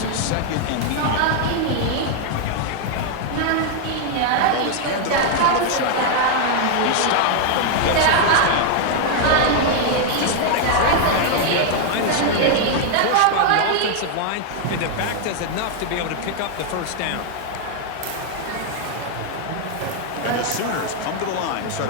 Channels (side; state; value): both; different; correlation 0.00